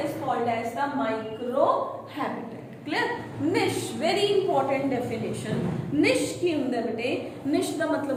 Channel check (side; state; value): both; identical; correlation 1.00